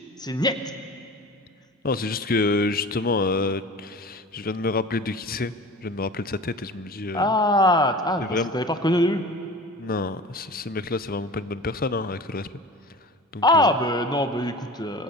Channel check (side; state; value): both; normal; correlation 0.38